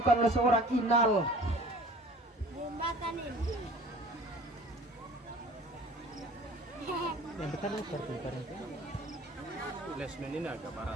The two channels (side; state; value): both; normal; correlation 0.47